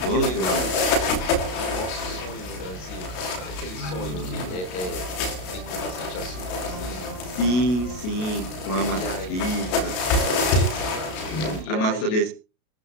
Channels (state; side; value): late; right; 33 ms